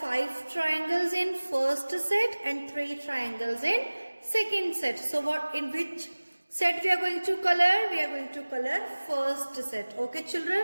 triangles in first set and 3 triangles in second set. So what, in which set we are going to color first set. Okay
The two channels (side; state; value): both; inverted; correlation -1.00